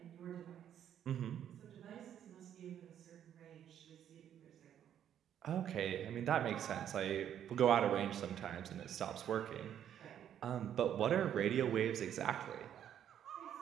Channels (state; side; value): quieter; left; 9.9 dB